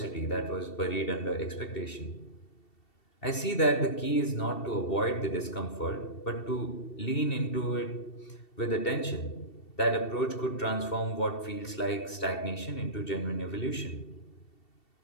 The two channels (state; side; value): late; right; 2.7 ms